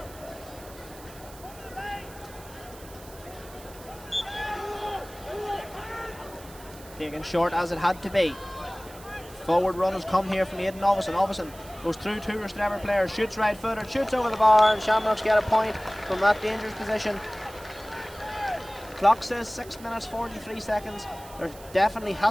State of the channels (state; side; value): noise; right; hiss, 20 dB below the sound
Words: Taken short as it had to be. Forward run has come here from Aidan Ovison. Ovison goes through two Rostrevor players, shoots right footed, shoots over the bar, and Shamrocks get a point from that dangerous position. Clock says 6 minutes 43 seconds. There definitely